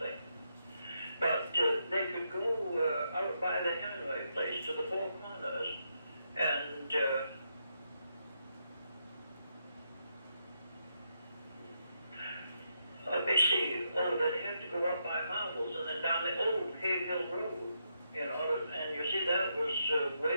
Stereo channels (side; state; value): both; inverted; correlation -0.81